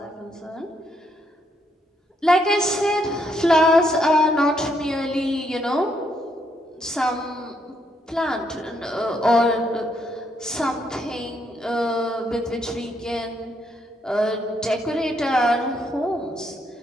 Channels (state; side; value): normal; both; correlation 0.75